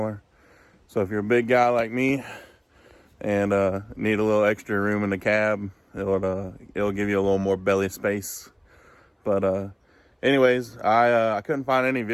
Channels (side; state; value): both; identical; correlation 1.00